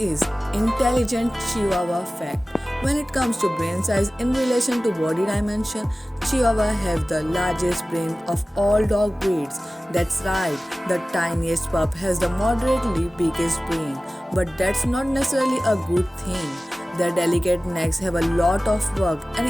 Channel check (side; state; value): both; normal; correlation 0.97